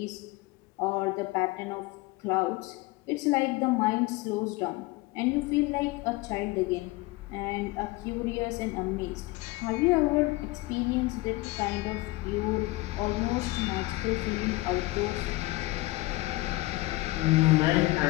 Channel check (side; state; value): right; quieter; 20.7 dB